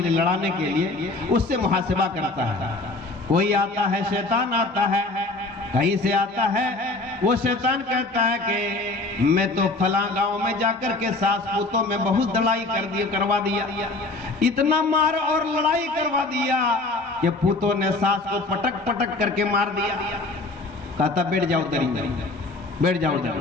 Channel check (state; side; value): quieter; right; 3.2 dB